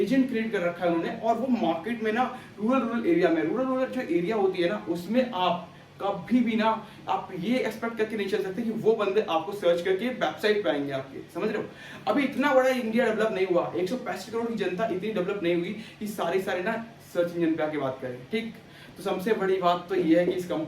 एजेंट क्रिएट कर रखा है उन्होंने, और वो मार्केट में ना रूरल एरिया में, रूरल जो एरिया होती है ना उसमें आप कभी भी ना आप ये एक्सपेक्ट करके नहीं चल सकते कि वो बंदे आपको सर्च करके वेबसाइट पे आएंगे आपके, समझ रहे हो। अभी इतना बड़ा इंडिया डेवलप नहीं हुआ, 165 करोड़ की जनता इतनी डेवलप नहीं हुई कि सारे ना सर्च इंजन पे आके बात करें, ठीक। तो सबसे बड़ी बात तो ये है कि इस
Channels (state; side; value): identical; both; correlation 1.00